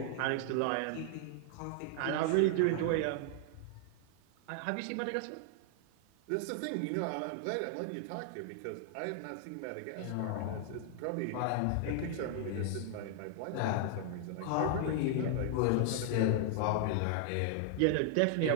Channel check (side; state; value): both; different; correlation 0.00